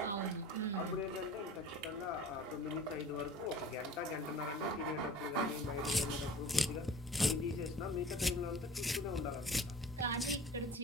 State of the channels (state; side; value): normal; both; correlation 0.43